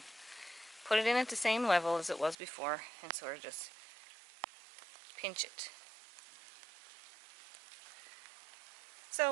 Put it in at the same level as it was before and sort of just pinch it.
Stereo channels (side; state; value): left; drops out; at 2.4 s